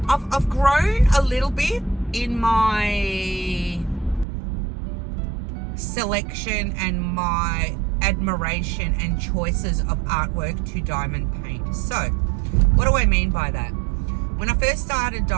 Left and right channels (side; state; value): left; drops out; at 4.2 s